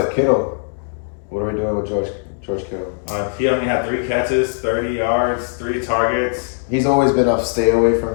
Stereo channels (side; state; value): right; silent; digital silence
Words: Kittle, what are we doing with George Kittle? He only had 3 catches, 30 yards, 3 targets. He's always been a stay away from